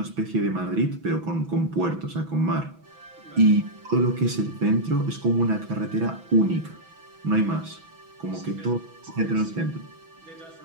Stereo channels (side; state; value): left; late; 6.1 ms